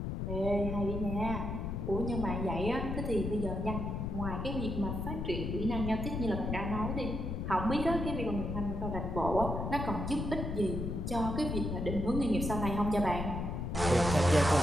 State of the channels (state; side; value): noise; left; rumble, 3 dB below the sound